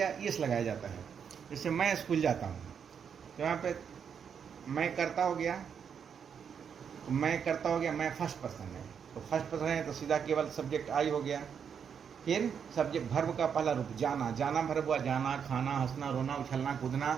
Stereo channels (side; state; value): left; quieter; 7.3 dB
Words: एस लगाया जाता है। जैसे मैं स्कूल जाता हूँ तो यहाँ पे मैं करता हो गया, मैं फर्स्ट पर्सन है तो फर्स्ट पर्सन है तो सीधा केवल सब्जेक्ट आई हो गया। फिर सब्जेक्ट भर्ब का पहला रूप जाना, जाना भर्ब हुआ, जाना, खाना, हंसना, रोना, उछलना,